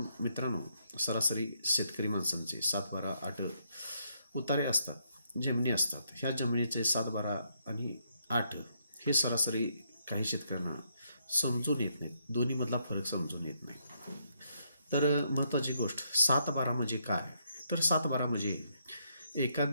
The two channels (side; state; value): both; inverted; correlation -0.75